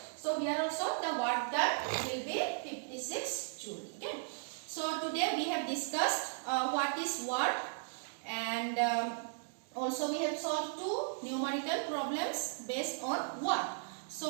So here also the work done will be 56 joule. Okay. So today we have discussed what is work, and also we have solved 2 numerical problems based on work.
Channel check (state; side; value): silent; left; digital silence